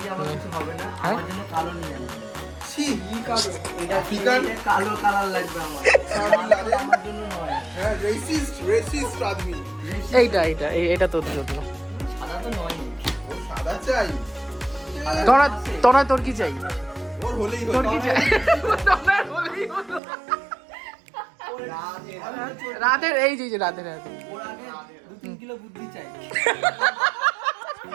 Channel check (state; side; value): drops out; left; at 20.0 s